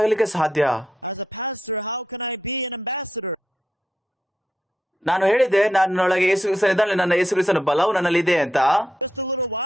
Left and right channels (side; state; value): both; normal; correlation 0.82